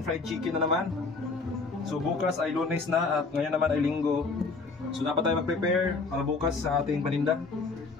fried chicken na naman. So bukas ay Lunes na at ngayon naman ay Linggo. So dapat tayo mag-prepare para bukas sa ating paninda.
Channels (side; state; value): right; quieter; 4.1 dB